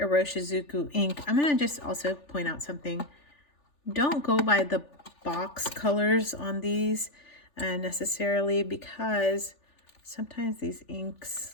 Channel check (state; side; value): late; right; 3.4 ms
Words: ink. I'm gonna just also point out something. Don't go by the box colors on these necessarily, because sometimes these inks